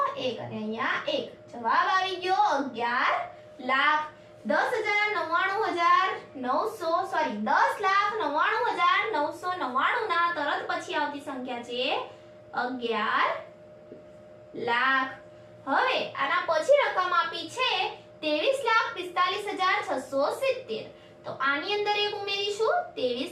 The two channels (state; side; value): identical; both; correlation 1.00